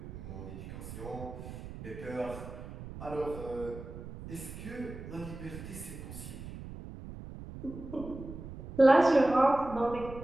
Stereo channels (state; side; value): noise; right; rumble, 11 dB below the sound